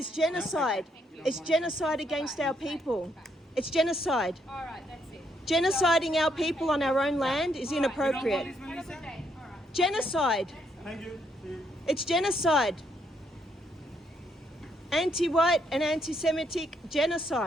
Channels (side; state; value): both; normal; correlation 0.74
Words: genocide. It's genocide against our people. It's genocide. All right, that's it. Genociding our people on our own land is inappropriate. Have a good day. All right. Genocide. Thank you. See you. It's genocide. Anti-white and anti-Semitic